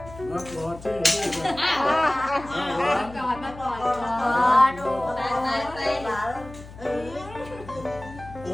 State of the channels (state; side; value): noise; left; hum, 16 dB below the sound